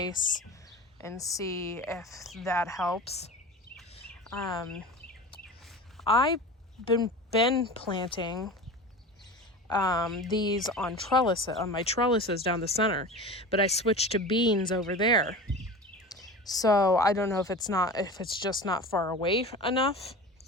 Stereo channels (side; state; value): both; normal; correlation 0.32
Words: and see if that helps. I've been planting these on my trellises down the center, but I switched to beans over there. So I don't know if it's just not far away enough